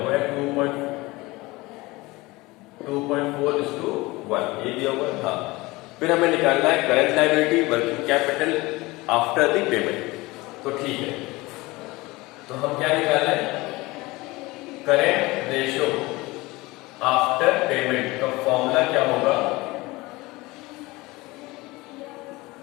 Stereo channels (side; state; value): right; quieter; 21.6 dB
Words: है 2.4:1, ये दिया हुआ था। फिर हमें निकालना है current liability working capital after the payment. तो ठीक है, तो हम क्या निकाल रहे हैं, करंट रेशियो आफ्टर पेमेंट का फॉर्मूला क्या होगा,